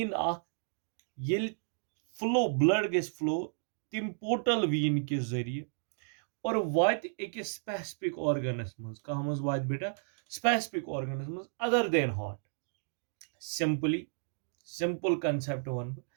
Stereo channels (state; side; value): silent; left; digital silence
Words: ये फ्लो ब्लड गस फ्लो तिम पोर्टल वीन के जरिए और वात अकिस स्पेसिफिक ऑर्गनस मज कह मज वात बेटा स्पेसिफिक ऑर्गनस मज other than heart. Simple concept one